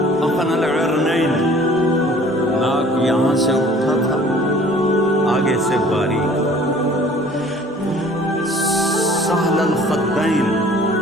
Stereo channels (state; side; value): normal; both; correlation 0.52